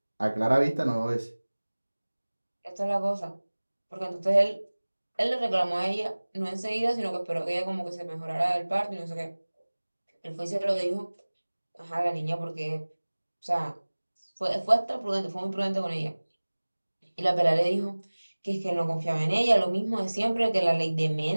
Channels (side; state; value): both; inverted; correlation -1.00